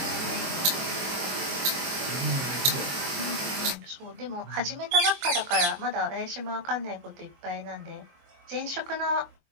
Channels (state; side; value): late; left; 23 ms